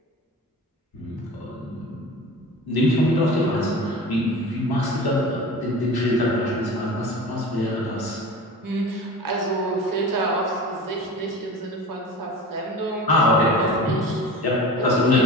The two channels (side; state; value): both; normal; correlation 0.35